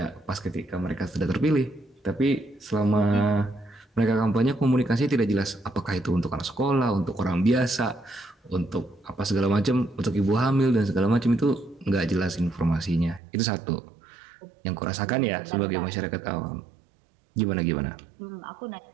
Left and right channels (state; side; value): drops out; left; at 13.2 s